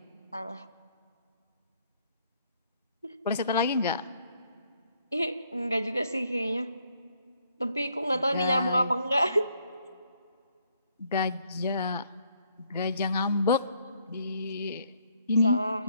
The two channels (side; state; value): both; inverted; correlation -0.69